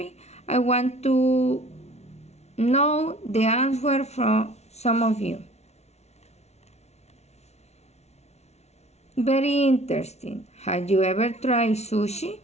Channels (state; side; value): late; right; 0.31 ms